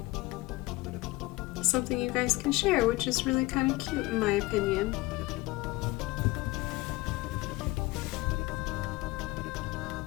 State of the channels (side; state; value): right; quieter; 20.9 dB